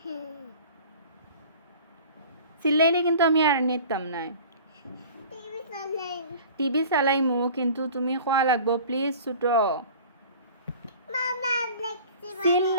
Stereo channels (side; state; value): both; inverted; correlation -0.42